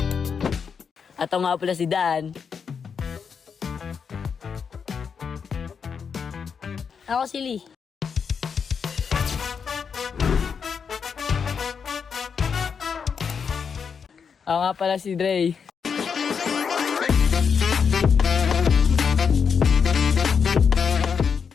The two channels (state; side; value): quieter; right; 6.3 dB